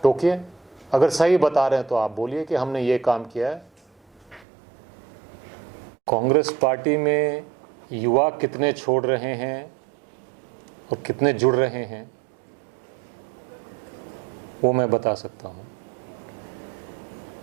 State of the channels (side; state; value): left; drops out; at 4.5 s